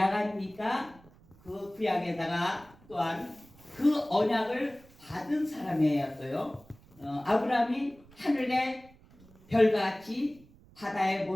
아닙니까? 그 구약에다가 또한 그 언약을 받은 사람이에요. 또요. 아브라함이 하늘의 별같이 바다의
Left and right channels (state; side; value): noise; right; rumble, 26 dB below the sound